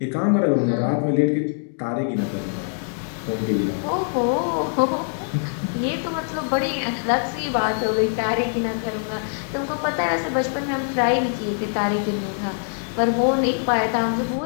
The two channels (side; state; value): right; silent; digital silence